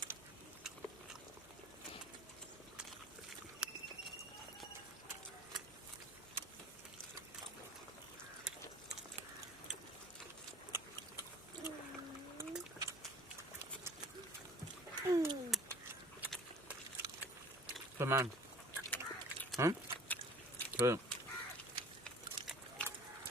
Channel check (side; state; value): both; normal; correlation 0.47